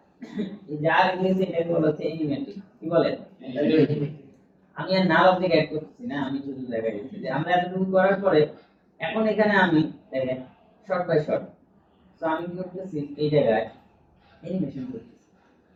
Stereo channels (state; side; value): identical; both; correlation 1.00